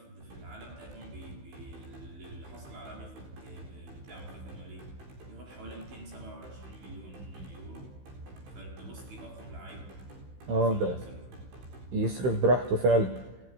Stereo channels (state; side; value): late; left; 15 ms